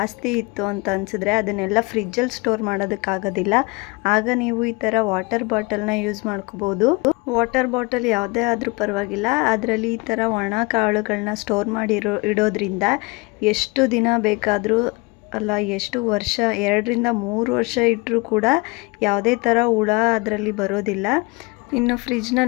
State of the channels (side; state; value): right; quieter; 26.4 dB